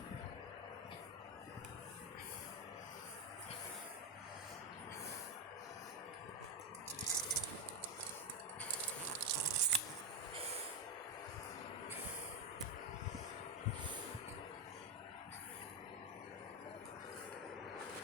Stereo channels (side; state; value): both; normal; correlation 0.07